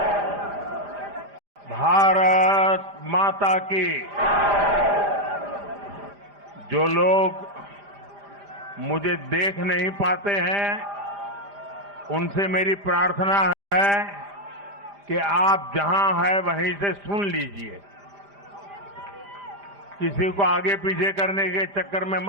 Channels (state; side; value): late; left; 5.0 ms